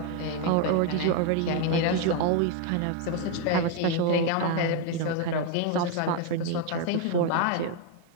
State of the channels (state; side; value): different; both; correlation 0.01